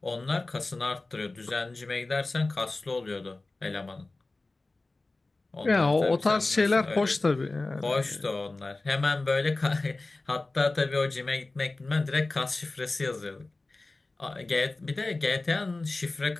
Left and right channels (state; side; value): quieter; right; 3.2 dB